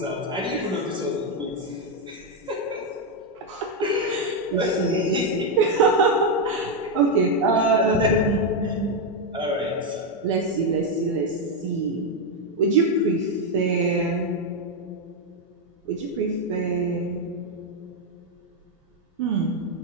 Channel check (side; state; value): both; normal; correlation 0.04